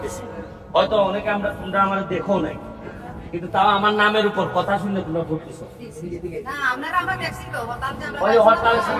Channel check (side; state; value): both; identical; correlation 1.00